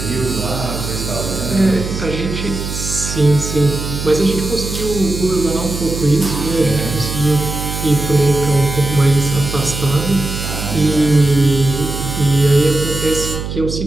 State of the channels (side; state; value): right; noise; hum, 6 dB below the sound